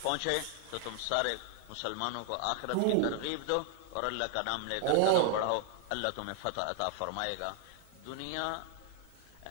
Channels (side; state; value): both; different; correlation 0.00